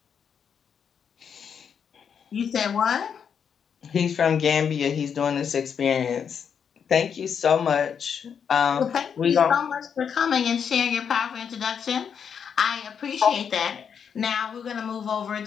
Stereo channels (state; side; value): quieter; right; 7.3 dB